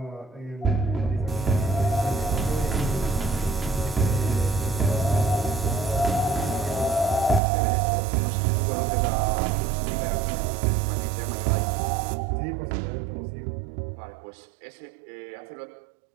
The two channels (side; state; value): left; drops out; at 7.4 s